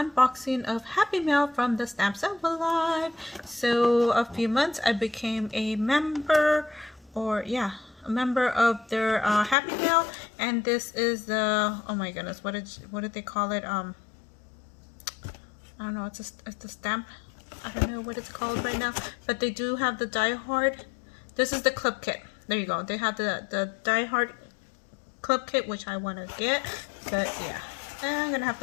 of Happy Mail from the Stamps Envelope. So a few months I became a member, a member of their Happy Mail, and this is the, oh my goodness, what did they call it? I don't know, it's a stamp. I don't know what it's called right now, but they do have the Die Hard. This is the clip kit. There you go. They have the Die Hard clip kit, which I want to get, but yeah, I'm gonna have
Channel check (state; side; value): drops out; right; at 9.6 s